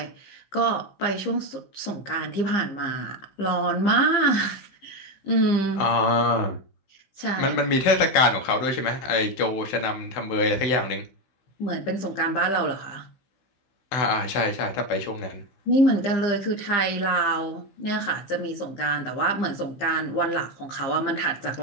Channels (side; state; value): right; late; 15 ms